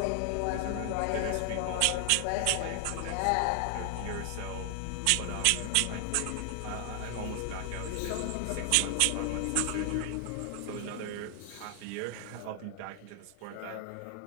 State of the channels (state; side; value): different; both; correlation 0.00